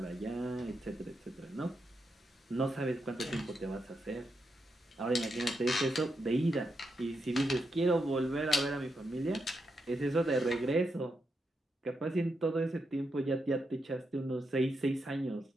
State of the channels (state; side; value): normal; both; correlation 0.83